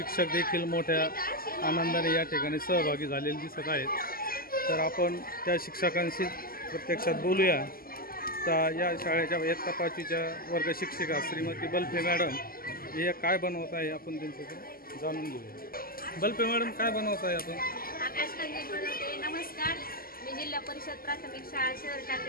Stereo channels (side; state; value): right; late; 0.42 ms